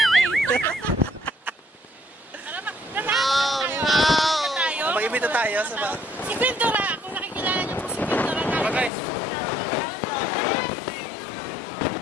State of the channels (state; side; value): drops out; right; at 8.9 s